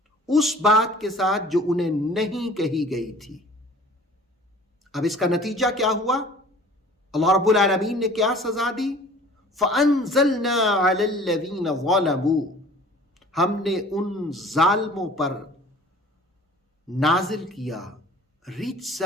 اس بات کے ساتھ جو انہیں نہیں کہی گئی تھی۔ اب اس کا نتیجہ کیا ہوا؟ اللہ رب العالمین نے کیا سزا دی؟ فَأَنزَلْنَا عَلَى الَّذِينَ ظَلَمُوا، ہم نے ان ظالموں پر نازل کیا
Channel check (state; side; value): normal; both; correlation 0.47